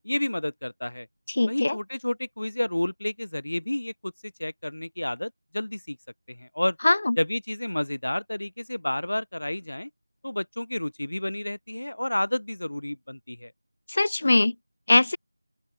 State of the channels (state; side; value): inverted; both; correlation -1.00